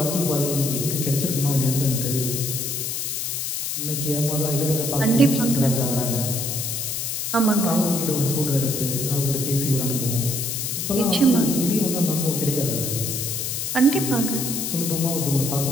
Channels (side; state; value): left; noise; hiss, 2 dB below the sound